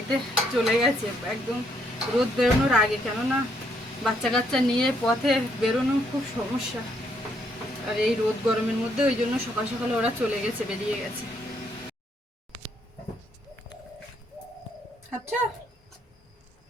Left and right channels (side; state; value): both; normal; correlation 0.72